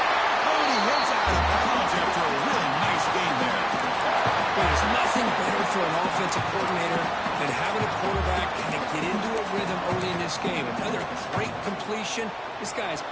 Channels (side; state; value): both; identical; correlation 1.00